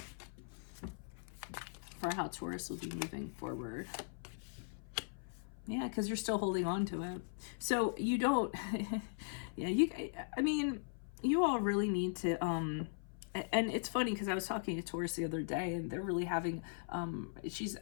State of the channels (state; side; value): silent; right; 52 dB below the other